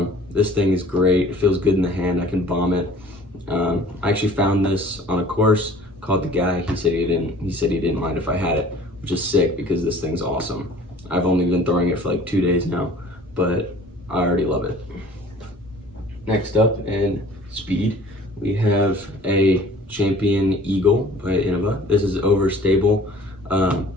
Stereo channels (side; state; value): both; normal; correlation 0.49